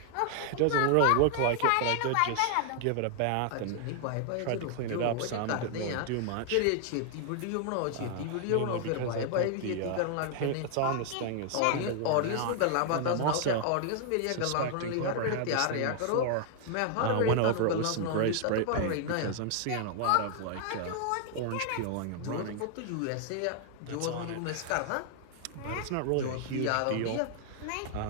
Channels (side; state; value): both; different; correlation 0.00